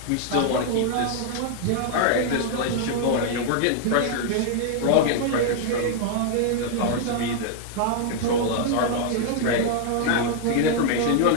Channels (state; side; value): different; both; correlation 0.00